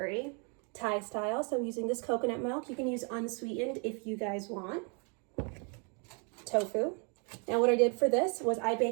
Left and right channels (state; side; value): quieter; left; 36.5 dB